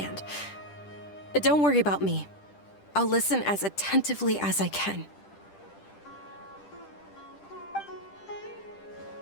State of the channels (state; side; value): late; right; 10 ms